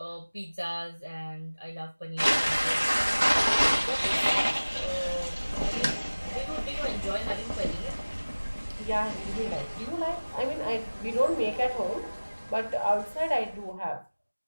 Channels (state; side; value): inverted; both; correlation -1.00